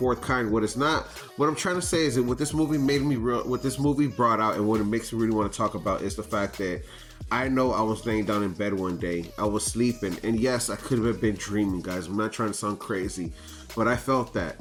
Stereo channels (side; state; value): both; identical; correlation 1.00